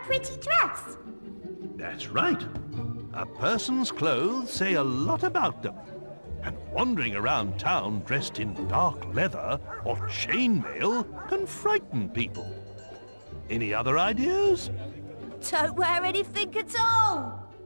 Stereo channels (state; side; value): inverted; both; correlation -1.00